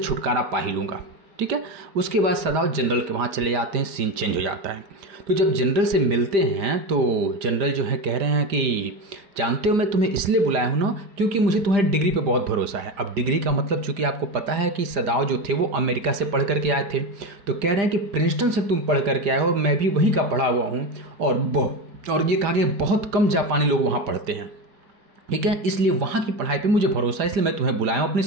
पा ही लूँगा, ठीक है। उसके बाद सदाव जनरल के वहाँ चले जाते हैं, सीन चेंज हो जाता है। तो जब जनरल से मिलते हैं तो जनरल जो है कह रहे हैं कि जानते हो मैं तुम्हें इसलिए बुलाया हूँ ना क्योंकि मुझे तुम्हारी डिग्री पे बहुत भरोसा है। अब डिग्री का मतलब चूंकि आपको पता है कि सदाव जो थे वो अमेरिका से पढ़ करके आए थे, तो कह रहे हैं कि प्रिंसटन से तुम पढ़ करके आए हो, मैं भी वहीं का पढ़ा हुआ हूँ, और ये कहा कि बहुत कम जापानी लोग वहाँ पढ़ते हैं, ठीक है, इसलिए वहाँ की पढ़ाई पर मुझे भरोसा है, इसलिए मैं तुम्हें बुलाया हूँ अपनी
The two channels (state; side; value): late; left; 5.0 ms